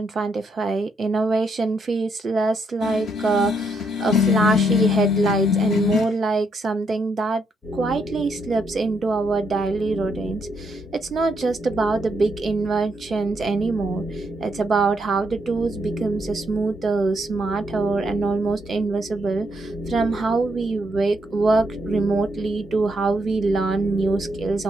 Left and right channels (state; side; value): normal; both; correlation 0.76